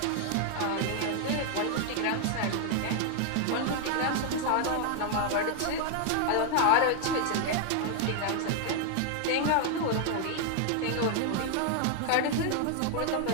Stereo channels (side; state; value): both; different; correlation 0.00